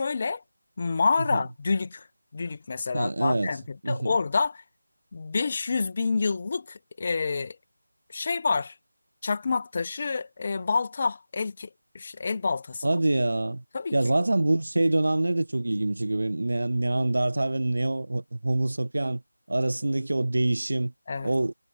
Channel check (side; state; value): both; inverted; correlation -0.95